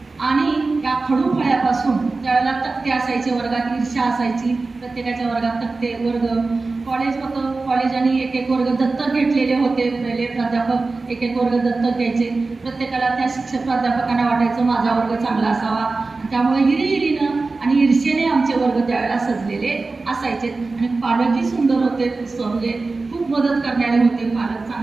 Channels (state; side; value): quieter; left; 3.7 dB